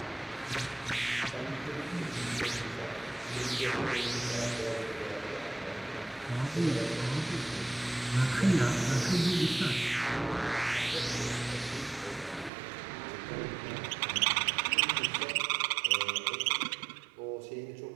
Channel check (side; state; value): left; drops out; at 12.5 s